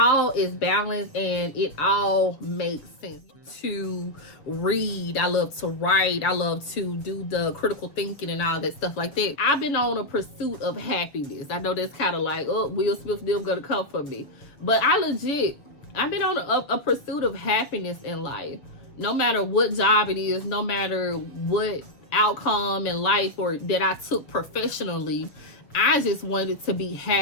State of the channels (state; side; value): late; right; 6.8 ms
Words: is balanced, and it all makes sense. To read, I love to write, I love to do the critical thinking and all that stuff like that. I've been on a pursuit of happiness. I know that's kind of like, oh, Will Smith, them gonna come for me, but I've been on a pursuit of happiness in life. No matter what job it is, no matter what outcome in life or that I took professionally, I just wanted to be